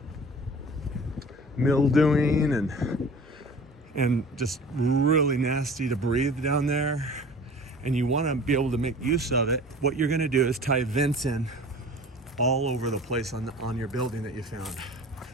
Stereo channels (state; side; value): normal; both; correlation 0.43